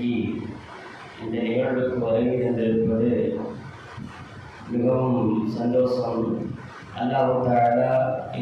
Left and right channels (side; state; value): both; identical; correlation 1.00